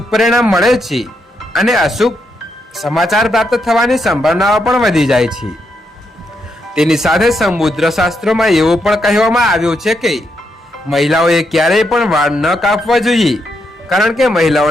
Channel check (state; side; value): normal; both; correlation 0.80